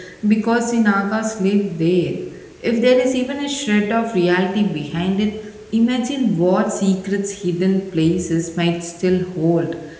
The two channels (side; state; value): both; identical; correlation 1.00